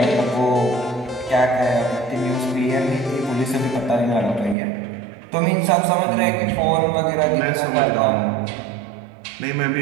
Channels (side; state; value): left; drops out; at 4.5 s